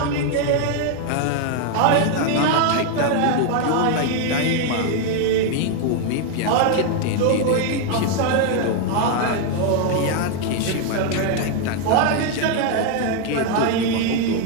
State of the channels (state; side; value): different; both; correlation 0.01